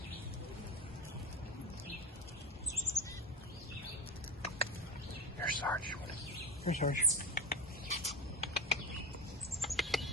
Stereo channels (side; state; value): both; normal; correlation 0.28